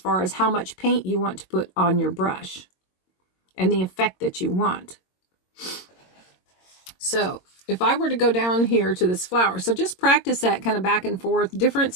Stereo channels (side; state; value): right; late; 22 ms